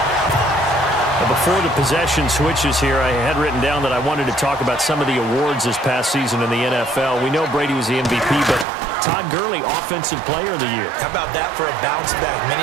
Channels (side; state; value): left; drops out; at 8.7 s